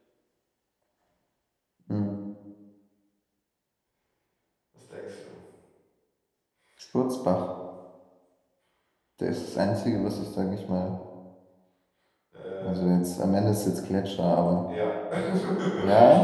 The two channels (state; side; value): identical; both; correlation 1.00